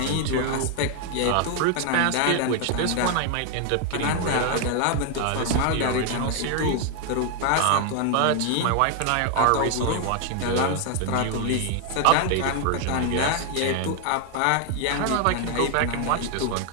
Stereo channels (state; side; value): different; both; correlation 0.00